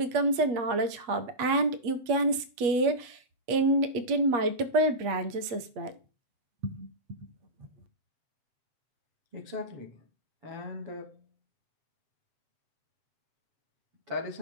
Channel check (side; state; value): left; late; 8.4 ms